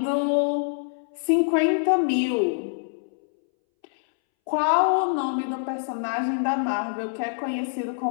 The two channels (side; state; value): right; silent; 62 dB below the other